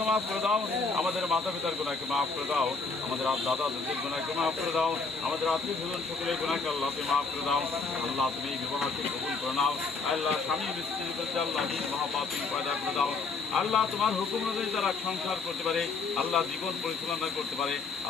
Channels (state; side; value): quieter; right; 4.4 dB